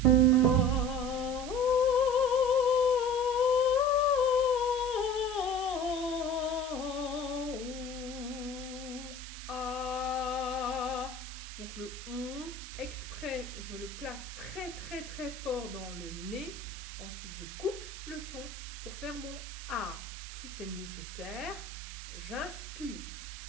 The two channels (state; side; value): noise; right; hiss, 12 dB below the sound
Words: Donc le on, exprès, je le place très fort dans le nez. Ensuite, je coupe le son pour faire mon A. Si c'est nécessaire, j'inspire.